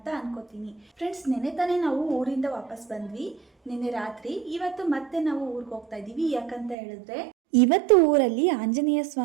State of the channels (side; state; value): left; drops out; at 6.8 s